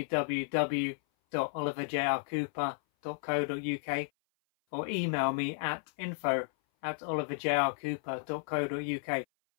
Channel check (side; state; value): right; silent; 56 dB below the other